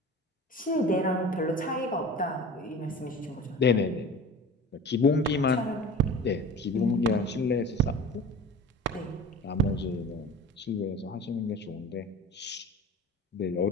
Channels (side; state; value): both; normal; correlation 0.38